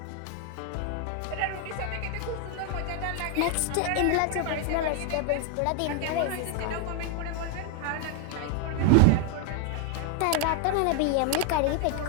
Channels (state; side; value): different; both; correlation 0.00